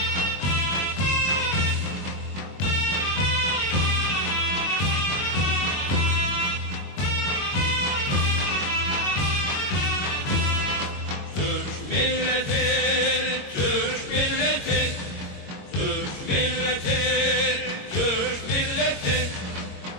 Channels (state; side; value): late; right; 22 ms